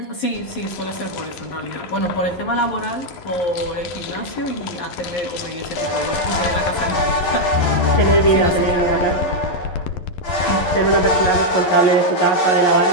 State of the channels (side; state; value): right; late; 11 ms